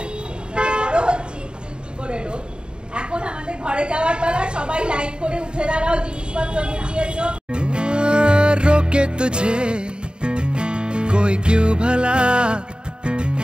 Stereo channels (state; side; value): late; left; 0.050 ms